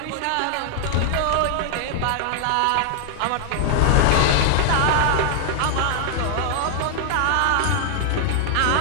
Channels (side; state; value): both; different; correlation 0.00